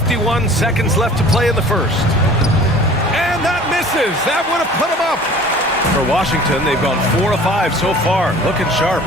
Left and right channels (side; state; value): both; normal; correlation 0.46